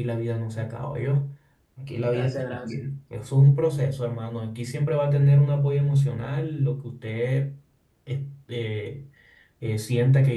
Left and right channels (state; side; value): identical; both; correlation 1.00